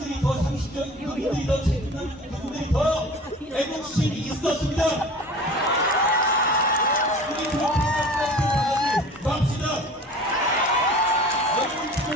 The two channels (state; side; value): normal; both; correlation 0.41